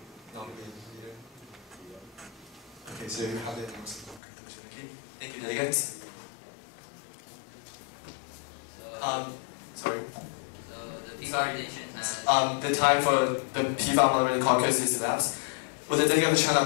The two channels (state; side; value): drops out; right; at 4.2 s